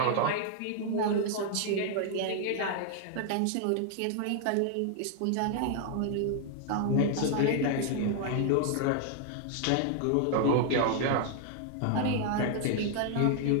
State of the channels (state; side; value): different; both; correlation 0.00